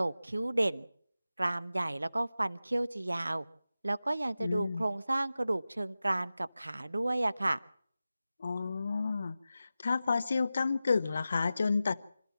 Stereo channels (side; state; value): both; inverted; correlation -0.94